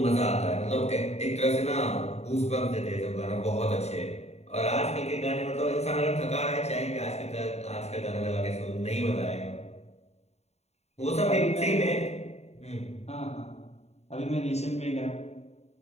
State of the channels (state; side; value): late; right; 0.31 ms